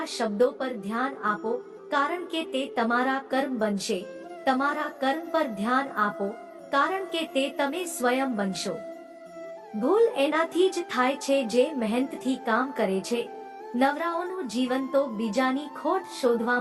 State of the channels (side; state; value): both; identical; correlation 1.00